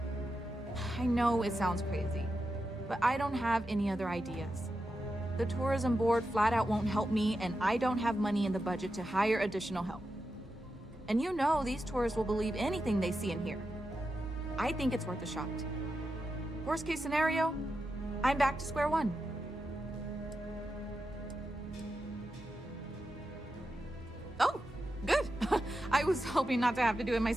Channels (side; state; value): both; normal; correlation 0.89